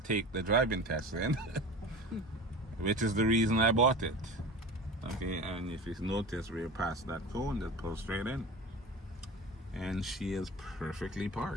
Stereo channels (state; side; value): normal; both; correlation 0.33